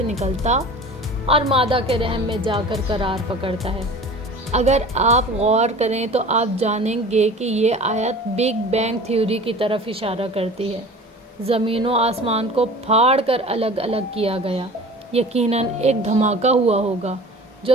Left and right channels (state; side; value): normal; both; correlation 0.41